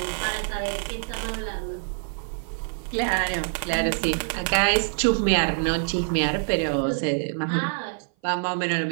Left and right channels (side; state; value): left; silent; 57 dB below the other